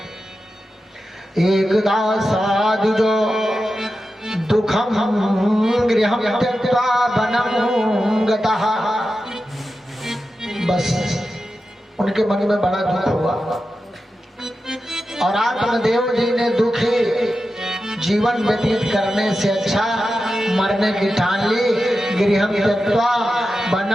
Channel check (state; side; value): normal; both; correlation 0.91